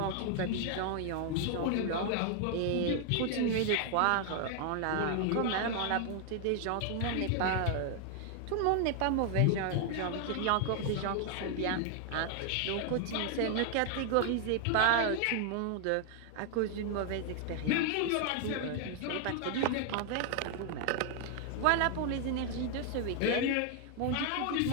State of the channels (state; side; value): different; both; correlation 0.00